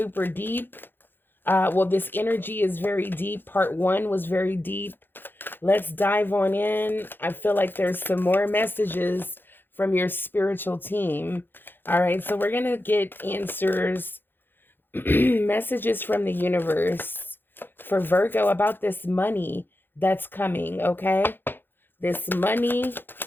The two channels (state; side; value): late; right; 0.098 ms